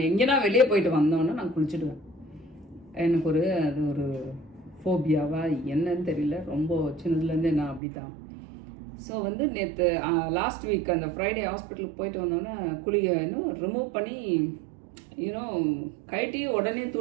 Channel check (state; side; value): drops out; left; at 7.8 s